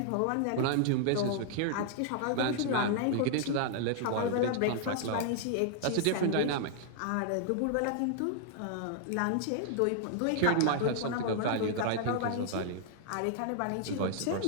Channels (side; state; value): both; different; correlation -0.01